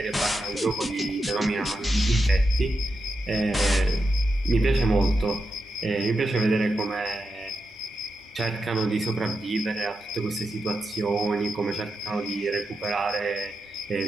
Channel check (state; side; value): normal; both; correlation 0.87